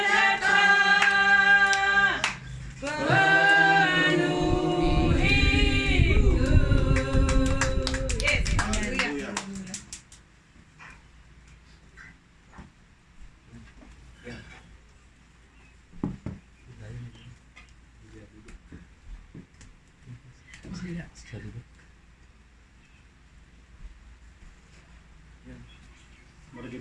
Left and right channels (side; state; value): both; identical; correlation 1.00